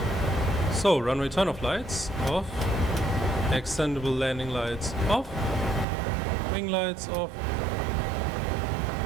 So, runway turn-off lights off, extendable landing lights off. Wing lights off.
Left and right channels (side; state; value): left; drops out; at 5.9 s